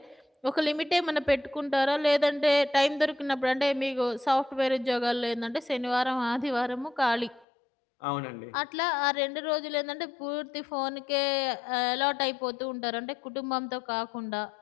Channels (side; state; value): right; drops out; at 7.5 s